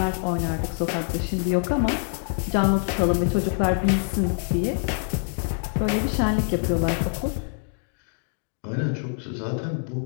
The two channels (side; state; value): right; silent; digital silence